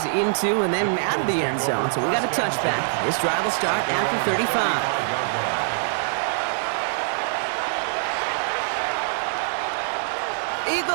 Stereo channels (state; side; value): silent; left; digital silence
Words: into and then out of the end zone, so we got a touchback. This drive will start after 35.